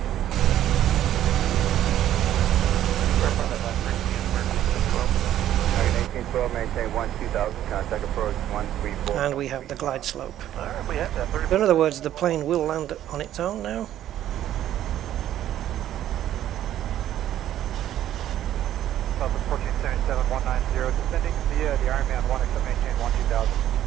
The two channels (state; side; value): quieter; left; 12.0 dB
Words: Maintain 12,000, contact approach 134. And we have the glide slope. Alright, we have that. 30. In other words, the plane will land on its own now. Southwest 1477, 190, descending via the Ironman 1, except maintain 12,000.